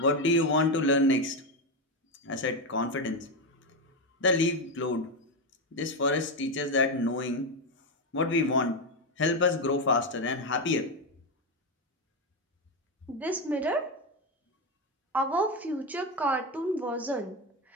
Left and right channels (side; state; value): both; normal; correlation 0.10